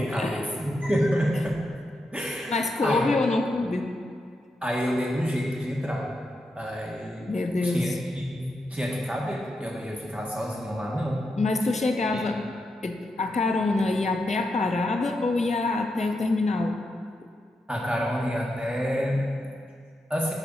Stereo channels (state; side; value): normal; both; correlation 0.85